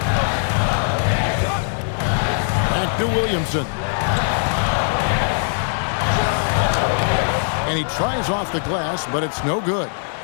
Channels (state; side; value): silent; right; 65 dB below the other